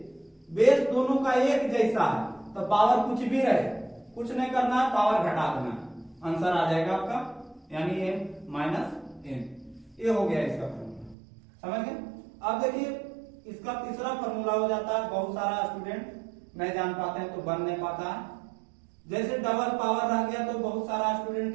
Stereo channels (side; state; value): left; drops out; at 11.2 s